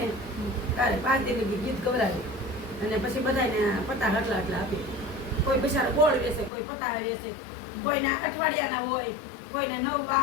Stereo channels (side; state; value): right; drops out; at 6.5 s